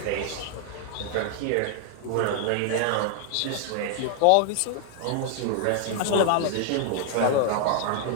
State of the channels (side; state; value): both; different; correlation 0.00